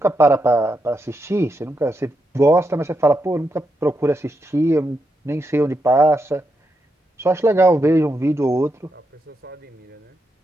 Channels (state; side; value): normal; both; correlation 0.83